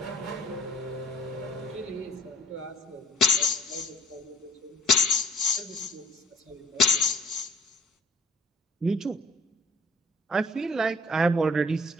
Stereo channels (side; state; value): both; normal; correlation 0.50